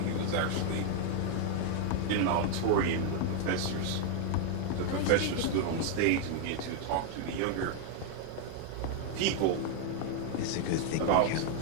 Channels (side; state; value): both; different; correlation 0.00